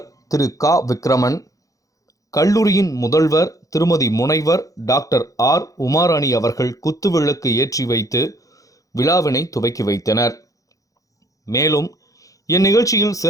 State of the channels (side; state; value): right; late; 0.16 ms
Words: திரு கா விக்ரமன், கல்லூரியின் முதல்வர் திருமதி முனைவர் டாக்டர் ஆர் உமாராணி அவர்கள் குத்துவிளக்கு ஏற்றி வைத்து விழாவினை துவக்கி வைத்தனர். மேலும் இந்நிகழ்ச்சியில்